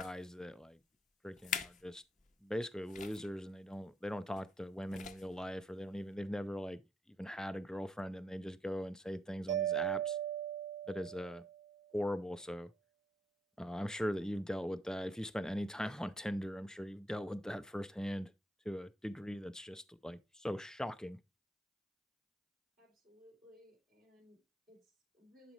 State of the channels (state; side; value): normal; both; correlation 0.74